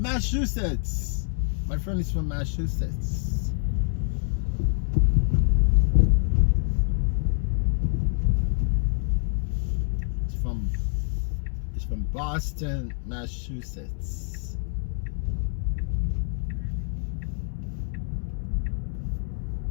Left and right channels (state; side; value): silent; right; 61 dB below the other